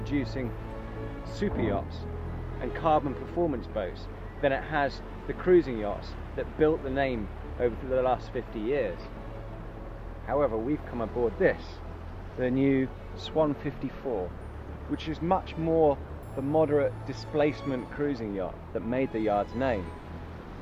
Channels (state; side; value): identical; both; correlation 1.00